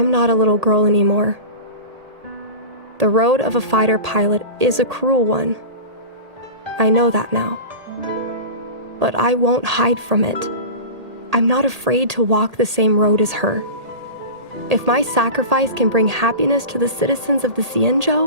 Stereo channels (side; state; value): left; late; 1.8 ms